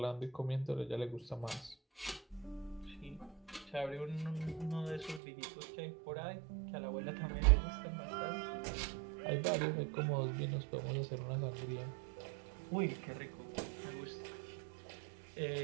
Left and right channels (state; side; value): drops out; left; at 5.2 s